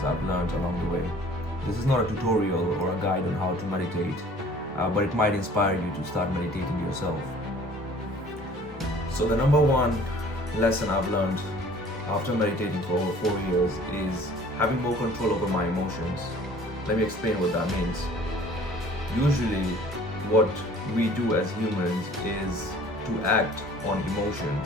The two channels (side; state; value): both; normal; correlation 0.51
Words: I've learned along the way. This is not a tutorial or a guide on how to meditate, but it might inspire you to start meditating yourself. So the number one lesson I've learned after meditating for over 4 years is having more control over my emotions. Let me explain what that means. Usually what we do as humans is to act on